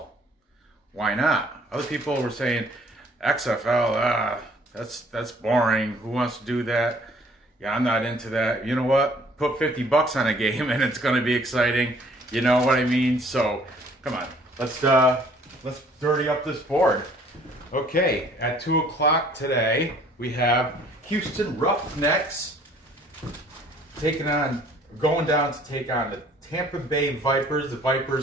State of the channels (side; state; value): both; normal; correlation 0.58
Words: Why not? Other people were saying, XFL, that's boring. Who wants to do that? Yeah, I'm not into that. You know what? Put $50 on a game and it's going to be exciting. You know what I mean? So, come on. Let's dirty up this board. Okay, at 2 o'clock today, we have Houston Roughnecks going down to take on the Tampa Bay Vipers, the